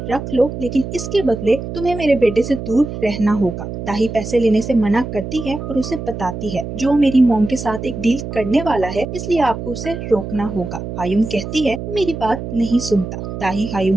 रख लो, लेकिन इसके बदले तुम्हें मेरे बेटे से दूर रहना होगा। दाही पैसे लेने से मना करती है और उसे बताती है, जो मेरी मॉम के साथ एक डील करने वाला है, इसलिए आपको उसे रोकना होगा। हायुम कहती है, मेरी बात नहीं सुनता। दाही हायुम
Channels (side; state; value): right; noise; hum, 7 dB below the sound